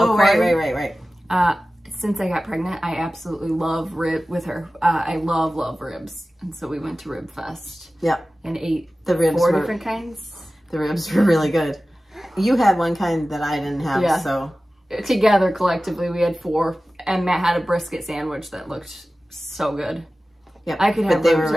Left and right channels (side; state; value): both; normal; correlation 0.96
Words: Right. Since I got pregnant, I absolutely love with her. I love ribs. And so we went to Rib Fest. Yep. And ate the ribs 4 different kinds. The ribs were really good. You had one kind that I didn't have, so. Together, collectively, we had 4. And Matt had a brisket sandwich that looked so good. Yeah, I could have they were